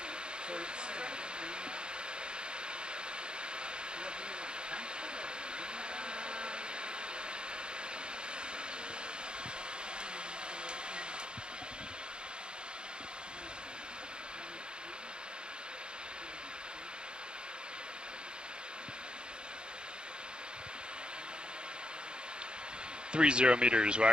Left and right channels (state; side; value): late; left; 0.050 ms